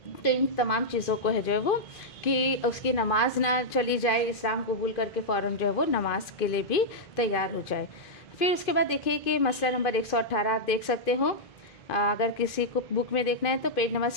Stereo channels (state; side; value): late; right; 2.5 ms